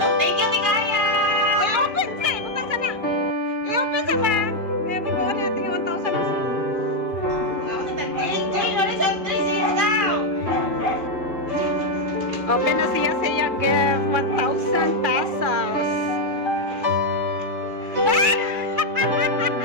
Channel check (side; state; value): left; late; 2.4 ms